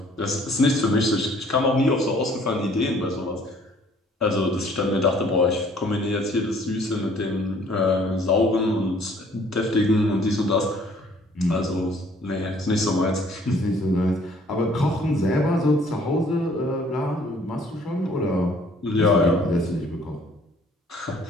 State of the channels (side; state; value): both; normal; correlation 0.58